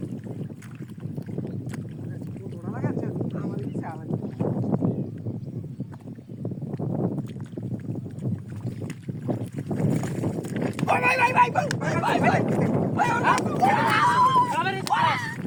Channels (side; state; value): both; identical; correlation 1.00